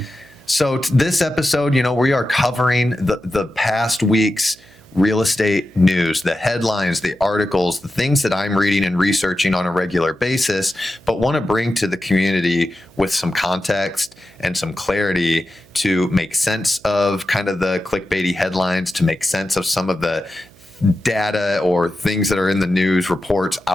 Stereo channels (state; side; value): noise; right; hum, 27 dB below the sound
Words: So this episode, we are covering the past week's real estate news, the headlines, the articles, the things that I'm reading and researching on a regular basis, but want to bring to the community with some context and some clarity to make sense of kind of the clickbaity headlines, to make sense of some of the data or things that are in the news reports